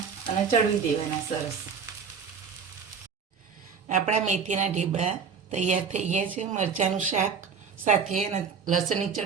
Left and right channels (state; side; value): quieter; left; 6.1 dB